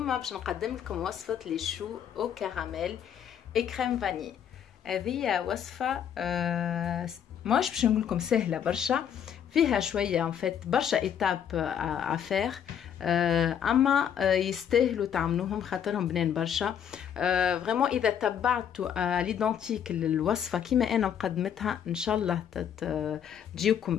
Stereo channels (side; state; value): right; quieter; 8.8 dB